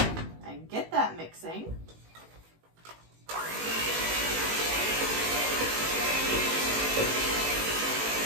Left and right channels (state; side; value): late; left; 18 ms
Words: get that mixing.